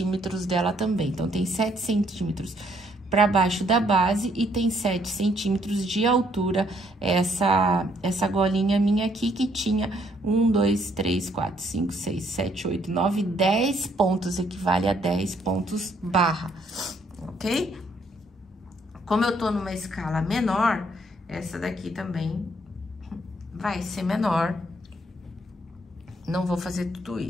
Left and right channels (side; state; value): both; normal; correlation 0.68